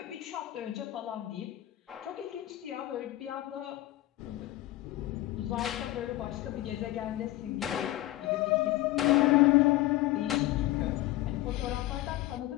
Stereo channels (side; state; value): right; quieter; 16.2 dB